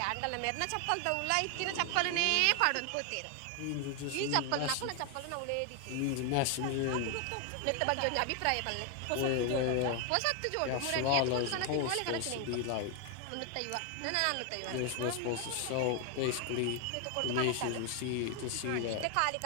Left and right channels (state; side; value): different; both; correlation 0.01